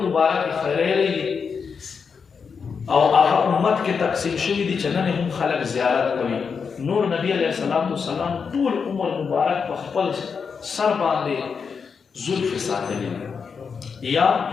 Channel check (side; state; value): right; quieter; 5.9 dB